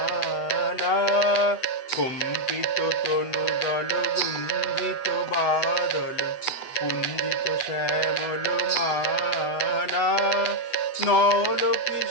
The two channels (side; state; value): right; late; 8.0 ms